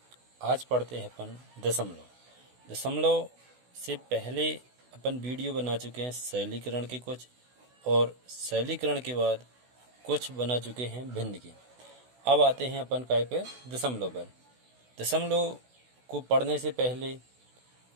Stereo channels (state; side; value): late; left; 16 ms